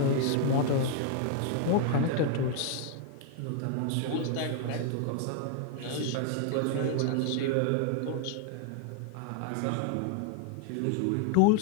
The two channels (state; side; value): different; both; correlation 0.00